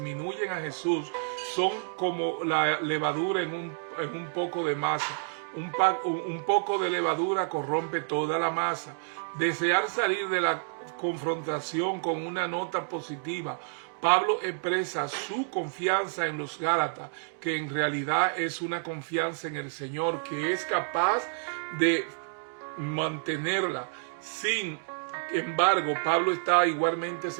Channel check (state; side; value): silent; left; digital silence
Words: a Jesús son como la levadura en un poco de masa. Un poco de levadura corrompe toda la masa. Desear salir de la confrontación con una nota positiva. Pablo expresa su confianza en los Gálatas, que en realidad es una confianza en el Señor, que es capaz de mantenerla. Sin embargo, Pablo está igualmente